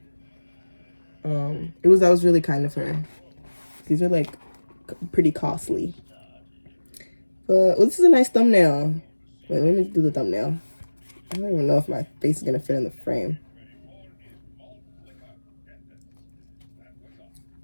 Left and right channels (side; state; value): both; inverted; correlation -1.00